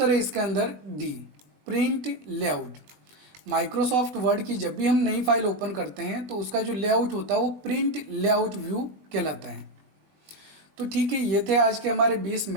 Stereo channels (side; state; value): left; late; 21 ms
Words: है इसके अंदर D, print layout. Microsoft word की जब भी हम नई फाइल ओपन करते हैं तो उसका जो लेआउट होता है वो प्रिंट लेआउट व्यू कहलाता है। तो ठीक है, ये थे आज के हमारे 20